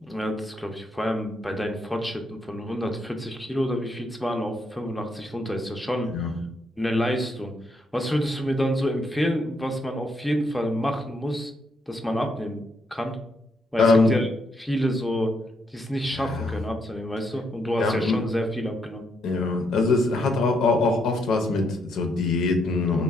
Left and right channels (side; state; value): both; normal; correlation 0.76